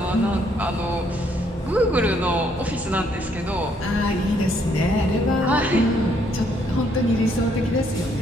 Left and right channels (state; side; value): normal; both; correlation 0.69